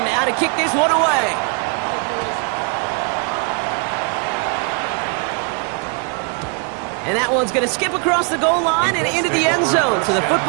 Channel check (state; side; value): quieter; left; 37.2 dB